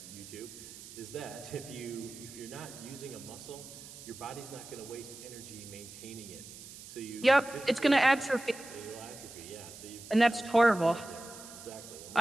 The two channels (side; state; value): right; noise; hiss, 15 dB below the sound